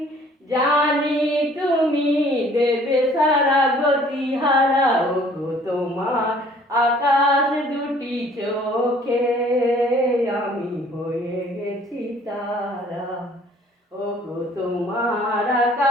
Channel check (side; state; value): both; normal; correlation 0.56